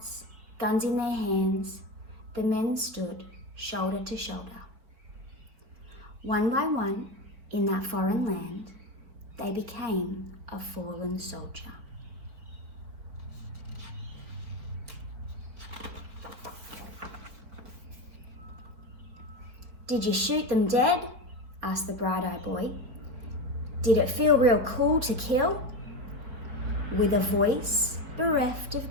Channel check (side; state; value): left; late; 4.5 ms